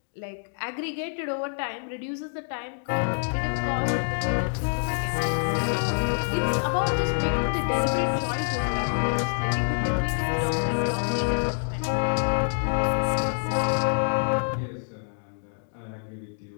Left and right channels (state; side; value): silent; right; digital silence